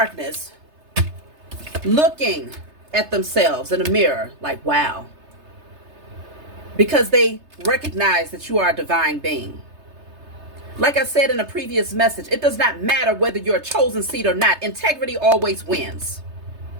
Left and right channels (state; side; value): late; left; 3.3 ms